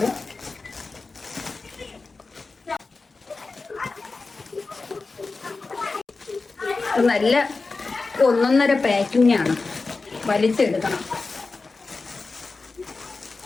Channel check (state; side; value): quieter; right; 3.9 dB